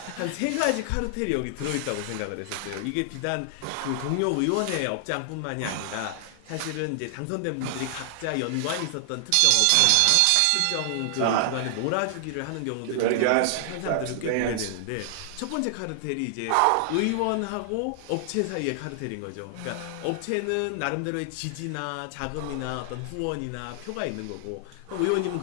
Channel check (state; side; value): different; both; correlation 0.00